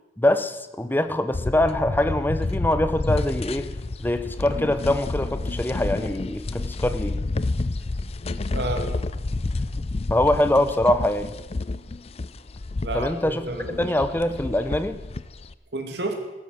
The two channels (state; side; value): normal; both; correlation 0.82